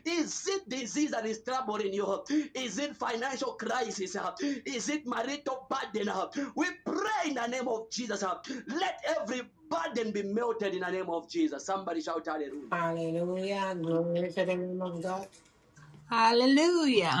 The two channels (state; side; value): identical; both; correlation 1.00